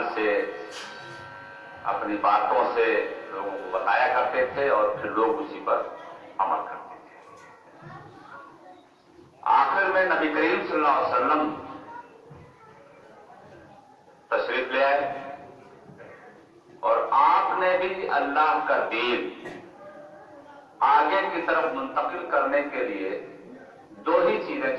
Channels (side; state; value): both; identical; correlation 1.00